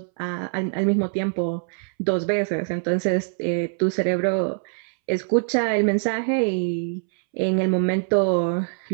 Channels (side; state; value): left; silent; 63 dB below the other